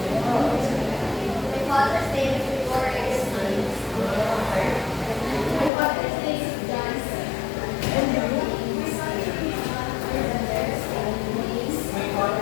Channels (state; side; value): drops out; right; at 5.7 s